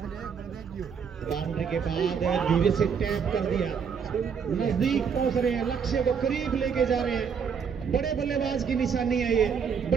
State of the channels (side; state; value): left; quieter; 6.6 dB